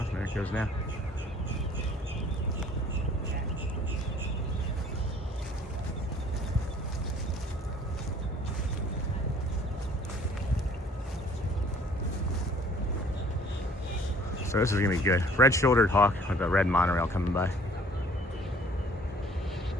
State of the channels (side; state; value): both; normal; correlation 0.55